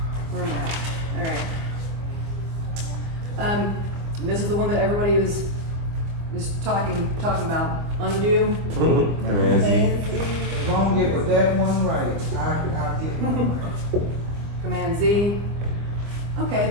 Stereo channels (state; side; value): late; left; 25 ms